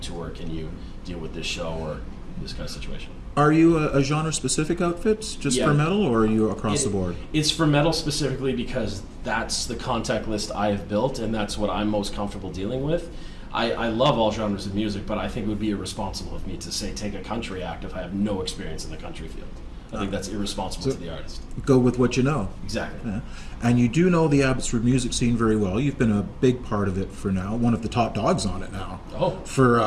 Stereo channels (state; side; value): identical; both; correlation 1.00